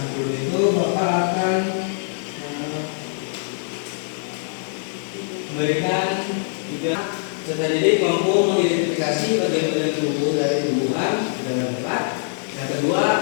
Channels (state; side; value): silent; right; digital silence